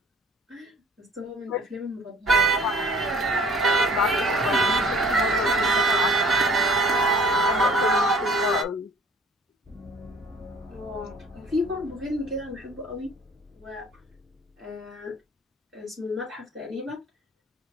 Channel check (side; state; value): both; normal; correlation 0.52